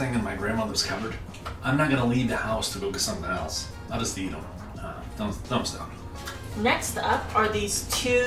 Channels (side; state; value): both; identical; correlation 1.00